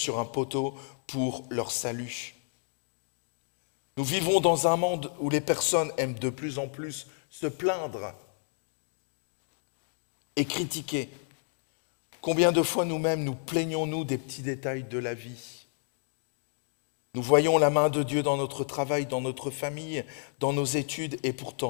un poteau pour leur salut. Nous vivons dans un monde où les personnes aiment de plus en plus se plaindre et critiquer. Combien de fois nous-mêmes nous plaignons-nous des petits détails de la vie? Nous voyons la main de Dieu dans notre travail, dans notre famille, dans nos études, et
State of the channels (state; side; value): silent; right; 55 dB below the other